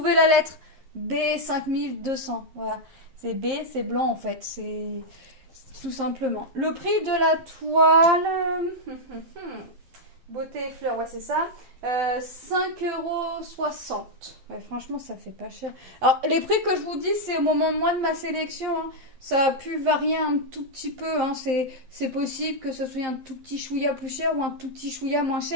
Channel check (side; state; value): left; late; 12 ms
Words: la lettre B 5200. Voilà. C'est B, c'est blanc en fait. C'est tout simplement. Le prix de la toile... Beauté et fleurs, ouais, c'est ça. 5,60 €. Ouais, franchement, ça fait pas cher. Alors, les prix que je vous dis, c'est au moment de moi de ma sélection. Hein. Ça a pu varier un tout petit peu. Hein. C'est possible que ce soit un tout petit chouïa plus cher ou un tout petit chouïa moins